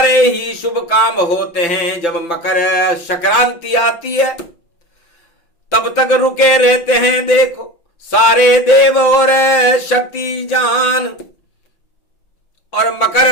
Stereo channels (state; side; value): late; right; 5.9 ms